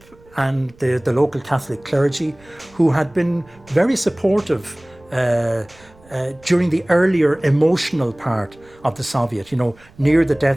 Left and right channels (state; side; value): noise; right; rumble, 27 dB below the sound